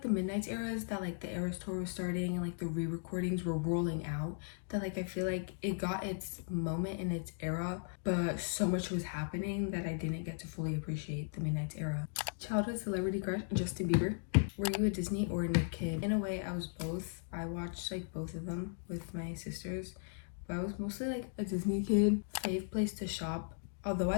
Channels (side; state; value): right; silent; digital silence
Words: the Midnight's era is that like the Eras tour was starting and like the re-recordings were rolling out, that like I feel like it got its moment in its era, but so much was happening that I didn't get to fully appreciate the Midnight's era. Childhood celebrity crush, Justin Bieber. Were you a Disney or a Nick kid? In a way, I was both. I watched like both of them with my sisters, but I was mostly like a Disney kid. Fave place to shop. Although I